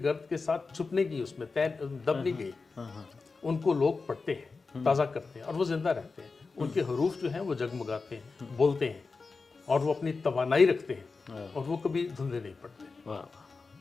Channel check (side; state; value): right; quieter; 4.3 dB